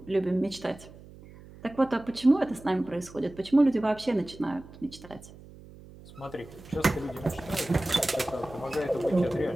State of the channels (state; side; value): noise; right; hum, 19 dB below the sound